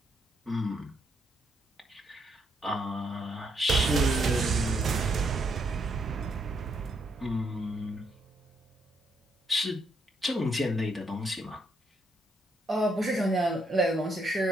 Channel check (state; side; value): normal; both; correlation 0.75